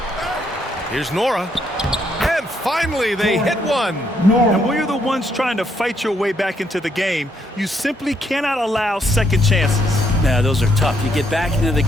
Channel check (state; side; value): normal; both; correlation 0.73